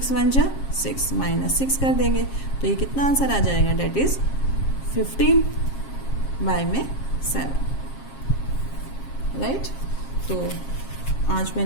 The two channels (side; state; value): right; late; 7.4 ms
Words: 1 जा 6, माइनस 6 कर देंगे, तो ये कितना आंसर आ जाएगा, डेट इज 15 बाय में 7। राइट, तो आज